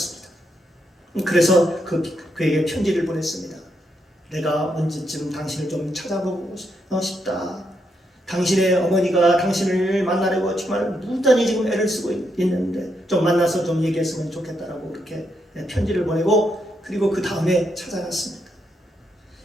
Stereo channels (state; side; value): normal; both; correlation 0.80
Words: 그래서 그에게 편지를 보냈습니다. 내가 언제쯤 당신을 좀 찾아보고 싶다. 당신의 어머니가 당신을 만나려고 정말 무단히 지금 애를 쓰고 있는데 좀 만나서 좀 얘기했으면 좋겠다라고 그렇게 편지를 보내고 그리고 그 다음에 찾아갔습니다.